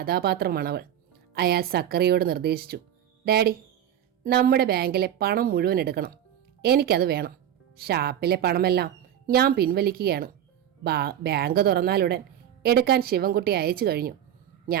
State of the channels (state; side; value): quieter; left; 10.5 dB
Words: അയാൾ സക്കറിയോട് നിർദ്ദേശിച്ചു. ഡാഡി, നമ്മുടെ ബാങ്കിലെ പണം മുഴുവൻ എടുക്കണം. എനിക്കത് വേണം. ഷാപ്പിലെ പണമെല്ലാം ഞാൻ പിൻവലിക്കുകയാണ്. ബാങ്ക് തുറന്നാലുടൻ എടുക്കാൻ ശിവൻകുട്ടി അയച്ചു കഴിഞ്ഞു.